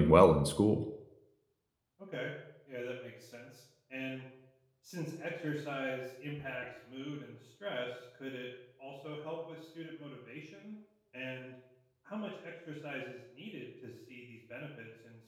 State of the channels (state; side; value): identical; both; correlation 1.00